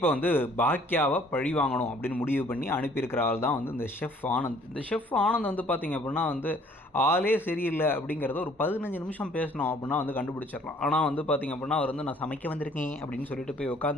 வந்து பாக்கியாவை பழி வாங்கணும் அப்படின்னு முடிவு பண்ணி அனுப்பியிருக்கிற ஆள் தான் வந்து இந்த ஷெஃப் ஆனந்த். இந்த ஷெஃப் ஆனந்த் வந்து பார்த்திங்க அப்படின்னா வந்து ஆளே சரியில்லை அப்படிங்கிறத ஒரு 15 நிமிஷம் பேசணும் அப்படின்னா வந்து கண்டுபிடிச்சிடலாம். ஆனால் வந்து பார்த்திங்க அப்படின்னா அவர் வந்து நான் சமைக்க வந்திருக்கேன் அப்படின்னு சொல்லிட்டு போய்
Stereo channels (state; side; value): normal; both; correlation 0.58